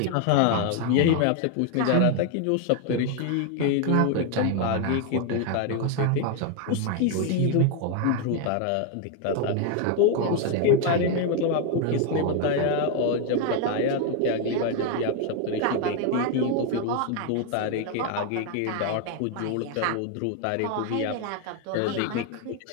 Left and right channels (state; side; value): different; both; correlation 0.01